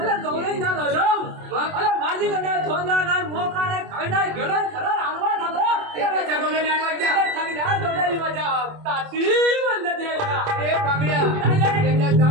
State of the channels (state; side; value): late; left; 27 ms